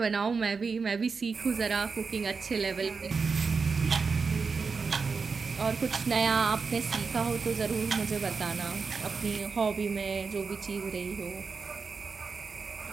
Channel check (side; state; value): left; quieter; 5.0 dB